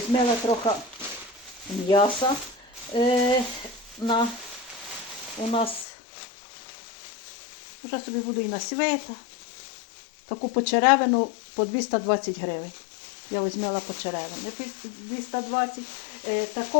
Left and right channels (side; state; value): right; drops out; at 5.9 s